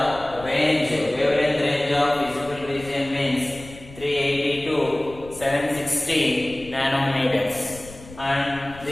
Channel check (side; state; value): left; noise; rumble, 18 dB below the sound